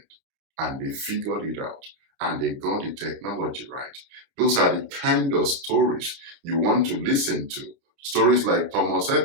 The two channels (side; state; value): left; late; 30 ms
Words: and they figured it out, and they got the technology right. Those are the kind of stories you want to listen to. Stories like Thomas